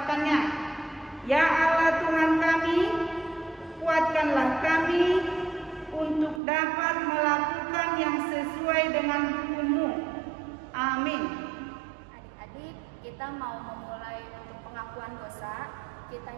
Ya Allah Tuhan kami, kuatkanlah kami untuk dapat melakukan yang sesuai dengan hukum-Mu. Amin. Adik-adik, kita kita mau memulai untuk pengakuan dosa, kita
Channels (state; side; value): drops out; left; at 6.4 s